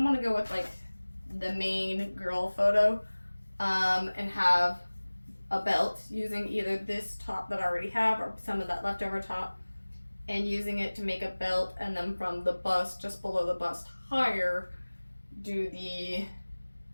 want to go with like the main girl photo and have a belt using either this top that I already have or some of that leftover top and using it to make a belt, and then from the bust, just below the bust higher, do the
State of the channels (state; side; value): inverted; both; correlation -1.00